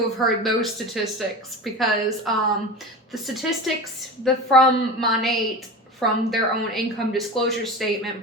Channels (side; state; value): both; normal; correlation 0.30